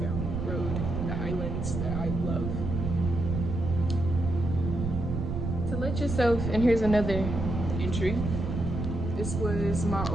Road, the Highlands that I love. To let yourself, and here's another entry. This was my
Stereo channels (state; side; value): noise; right; rumble, 3 dB below the sound